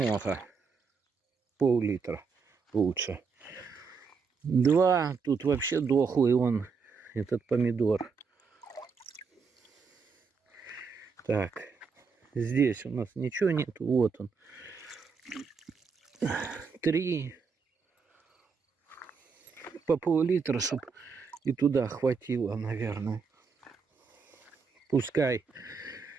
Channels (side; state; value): left; quieter; 5.4 dB